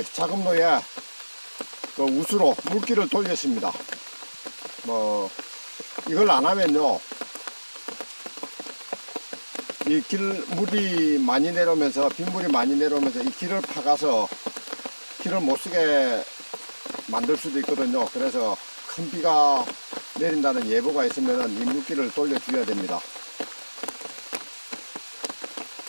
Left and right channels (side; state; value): both; inverted; correlation -1.00